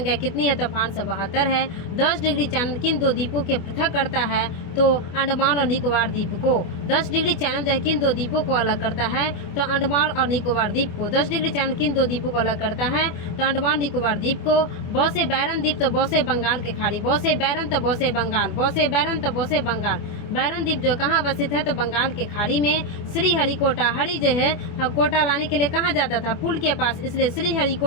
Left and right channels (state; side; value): late; right; 25 ms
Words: कितनी है? तो 572 है। 10 डिग्री चैनल किन दो द्वीपों के पृथक करता है? तो अंडमान और निकोबार द्वीप को। 10 डिग्री चैनल जो है किन दो द्वीपों को अलग करता है? तो अंडमान और निकोबार द्वीप को। 10 डिग्री चैनल किन दो द्वीपों को अलग करता है? तो अंडमान निकोबार द्वीप को। बौसे बैरन द्वीप तो बौसे बंगाल के खाड़ी, बौसे बैरन तो बौसे बंगाल, बौसे बैरन तो बौसे बंगाल। बैरन द्वीप जो कहाँ अवस्थित है? तो बंगाल के खाड़ी में। श्री हरिकोटा, हरि जो है कोटा लाने के लिए कहाँ जाता था? पुल के पास, इसलिए श्री